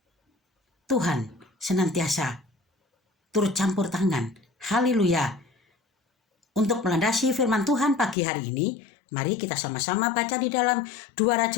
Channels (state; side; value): drops out; right; at 8.2 s